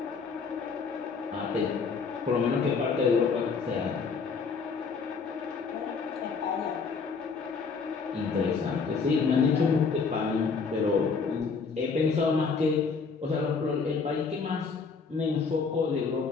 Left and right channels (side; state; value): right; quieter; 5.2 dB